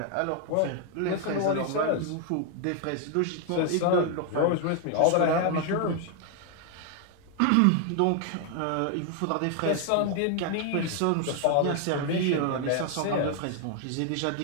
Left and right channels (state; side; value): different; both; correlation 0.00